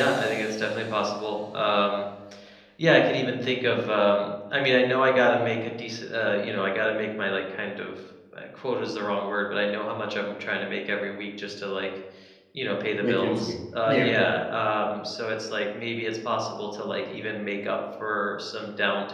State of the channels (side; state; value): both; identical; correlation 1.00